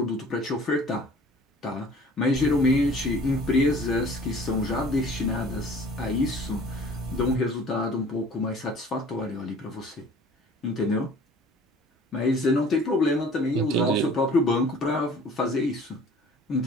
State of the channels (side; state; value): both; normal; correlation 0.49